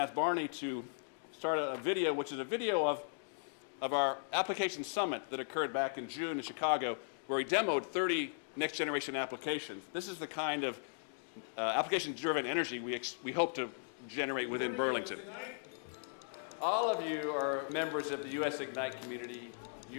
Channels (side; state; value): right; silent; digital silence